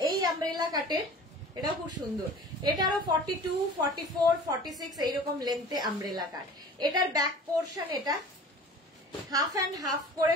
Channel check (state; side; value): normal; both; correlation 0.43